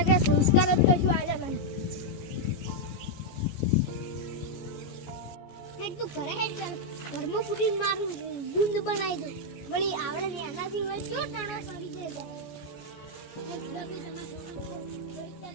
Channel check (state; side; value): late; right; 14 ms